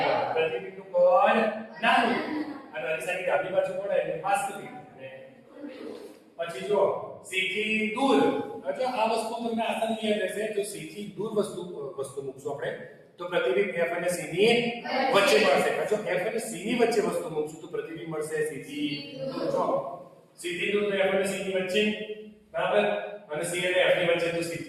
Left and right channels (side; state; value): both; identical; correlation 1.00